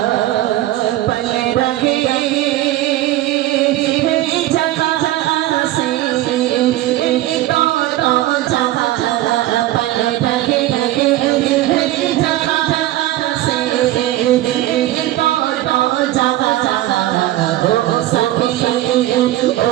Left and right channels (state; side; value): quieter; left; 15.0 dB